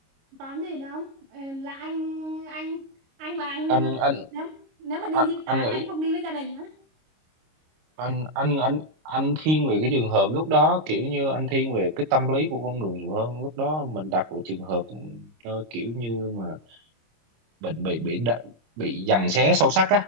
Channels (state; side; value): late; left; 26 ms